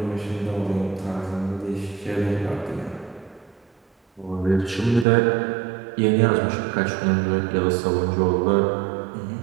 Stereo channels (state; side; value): drops out; left; at 5.1 s